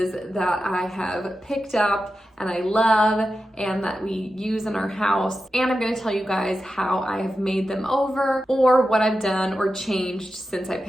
that I have picked up and I love and that we use in our house. And I'm gonna tell you guys how I have made them over or what I've done or changed since I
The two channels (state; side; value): normal; both; correlation 0.91